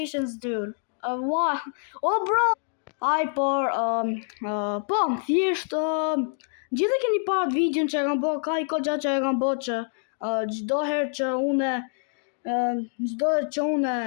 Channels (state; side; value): silent; right; 61 dB below the other